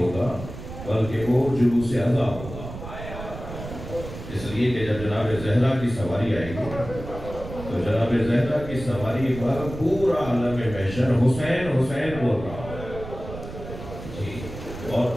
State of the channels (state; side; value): noise; right; rumble, 11 dB below the sound